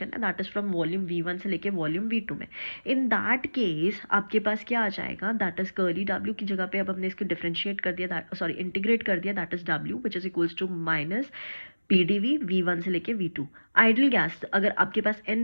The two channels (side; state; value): both; inverted; correlation -1.00